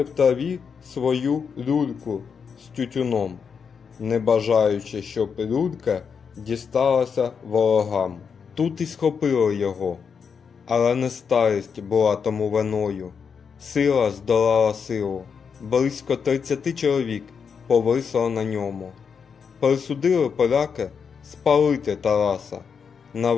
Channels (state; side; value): quieter; right; 6.3 dB